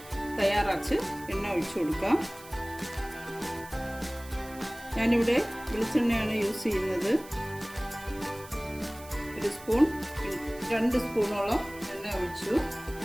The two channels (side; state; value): right; noise; hiss, 19 dB below the sound